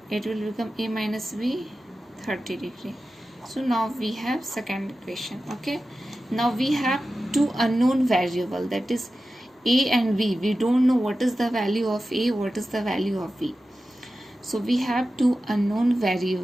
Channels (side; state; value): both; normal; correlation 0.94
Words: it will become a minus b 30 degree. So now we have second equation. Okay, now we have two unknown variable, that is a and b. We don't know what is the value of a, what is the value of b. So we have two unknown